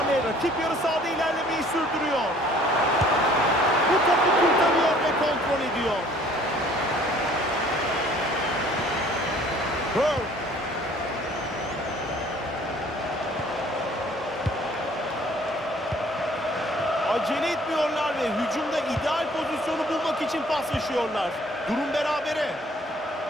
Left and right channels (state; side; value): normal; both; correlation 0.56